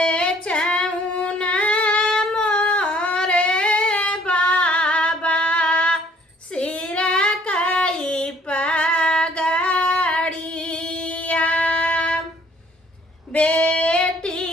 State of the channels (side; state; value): both; normal; correlation 0.59